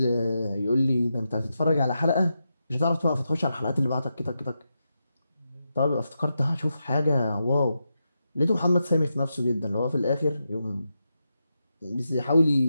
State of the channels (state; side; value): inverted; both; correlation -0.87